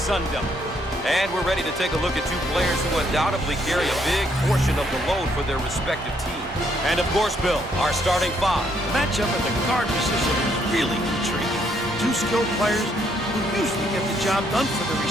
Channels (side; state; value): both; normal; correlation 0.71